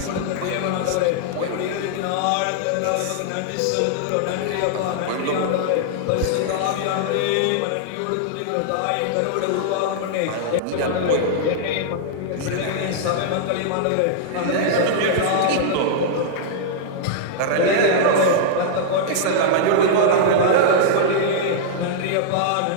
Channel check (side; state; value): both; different; correlation -0.01